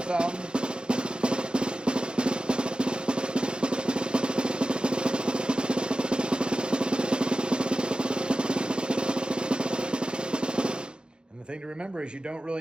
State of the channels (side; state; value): left; late; 0.050 ms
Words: thumb. And the thing to remember is you don't